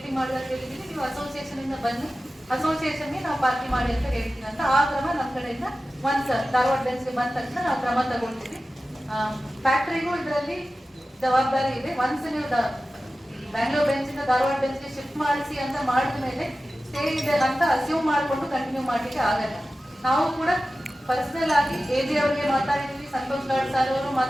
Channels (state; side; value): normal; both; correlation 0.94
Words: ಮಾಡಿದಾಗ ಹೇಳಿದೀವಿ, ನೀವು ಅಸೋಸಿಯೇಷನ್ ಇಂದ ಬನ್ನಿ, ಅಸೋಸಿಯೇಷನ್ಗೆ ನಾವು ಪಾರ್ಟಿ ಮಾಡಿ ಅಂತ ಹೇಳ್ತೀವಿ ಅಂತ. ಆ ಕ್ರಮ ನಮ್ಮ ಕಡೆಯಿಂದ ಒನ್ಸ್ ಧಾರವಾಡ ಬೆಂಚ್ಗೆ ಬಂದ ತಕ್ಷಣ ನಾವು ಕ್ರಮ ತಗೊಳ್ತೀವಿ. ಫ್ಯಾಕ್ಟರಿಗೂ ಇದರಲ್ಲಿ ಜವಾಬ್ದಾರಿ ಇದೆ. ಒನ್ಸ್ ನೀವು ಬ್ಯಾಂಗ್ಳೂರ್ ಬೆಂಚ್ ಇಂದ ಧಾರವಾಡ ಬೆಂಚ್ಗೆ ಶಿಫ್ಟ್ ಮಾಡಿಸಿ ಅಂತ ಮಾಡಿದ ಮೇಲೆ ಸ್ಟೇ ಇದೆ ಅಂತ ಅಸ್ಯೂಮ್ ಮಾಡಿಕೊಂಡು ಕಂಟಿನ್ಯೂ ಮಾಡ್ಲಿಕ್ಕೆ ಆಗಲ್ಲ. ನಾವು ಕೂಡ ಪರ್ಸನಲ್ ಆಗಿ ಎಜಿ ಅವರಿಗೆ ಮಾತಾಡಿದ್ವಿ, ಸಂತೋಷ್ ಲಾಡ್ ಸರ್ ಅವರು